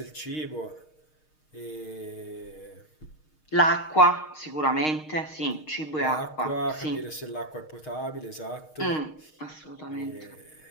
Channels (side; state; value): right; late; 6.5 ms